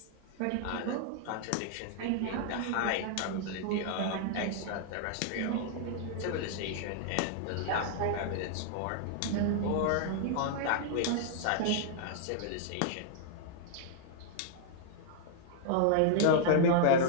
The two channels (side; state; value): both; different; correlation -0.01